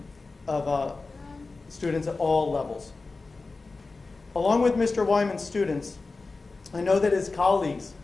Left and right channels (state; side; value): quieter; right; 3.8 dB